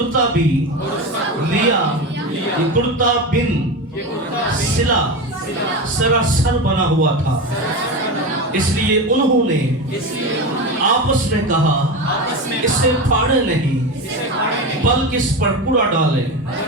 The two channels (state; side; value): normal; both; correlation 0.21